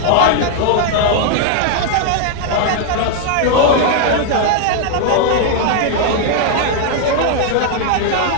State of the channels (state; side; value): different; both; correlation 0.00